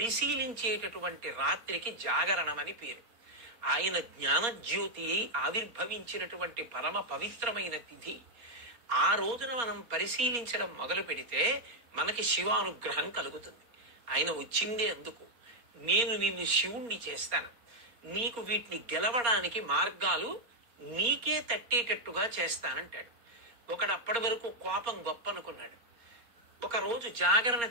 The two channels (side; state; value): left; late; 4.3 ms